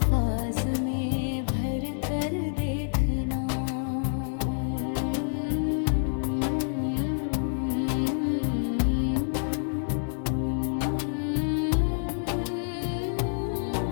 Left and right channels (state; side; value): silent; right; digital silence